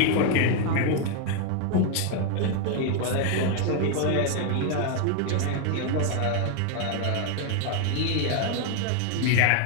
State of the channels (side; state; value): both; different; correlation 0.01